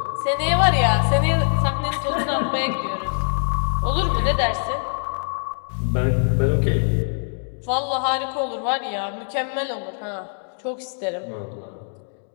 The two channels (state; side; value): silent; right; digital silence